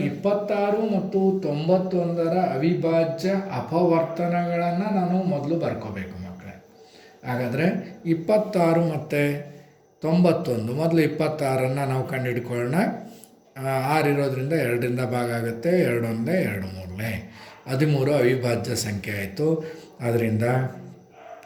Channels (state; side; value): identical; both; correlation 1.00